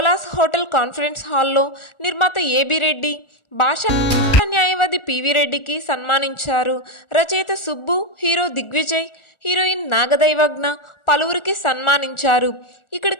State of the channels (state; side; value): late; right; 1.4 ms